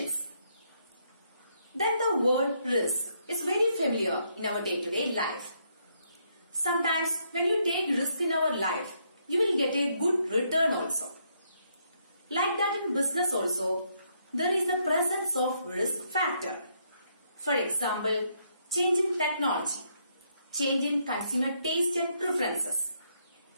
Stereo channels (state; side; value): inverted; both; correlation -0.74